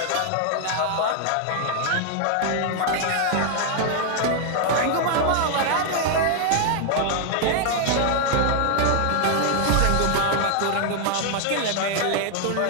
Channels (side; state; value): both; different; correlation 0.00